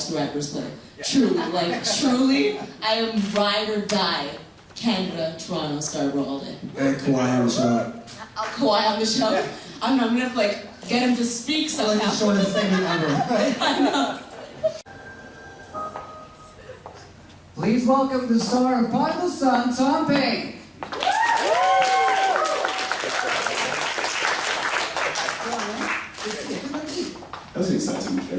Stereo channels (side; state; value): both; identical; correlation 1.00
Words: the Raptors play. Truly, I am ride or die. Canada, Toronto, Scarborough all day. Kawhi on the show. Kawhi on the show. I'm gonna have to get him to speak somehow. Like the shortest segment ever, right? I know. Please welcome the star of Prodigal Son, Tom Payne. That was an exciting